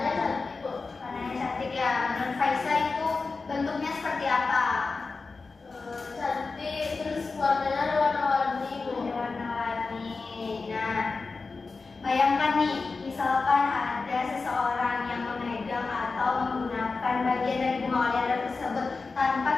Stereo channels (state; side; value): quieter; right; 4.2 dB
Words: cantik, Bu. Warnanya cantik ya. Menurut Faisal itu bentuknya seperti apa? Cantik, terus warnanya ada warna-warni, Bu. Warna-warni. Nah, bayangkan nih, misalkan ada seseorang yang memegang atau menggunakan bagian dari bunga oleander tersebut tanpa